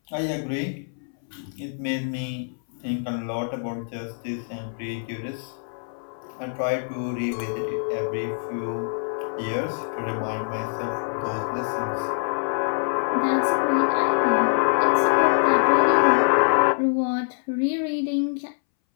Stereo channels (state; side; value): silent; right; 62 dB below the other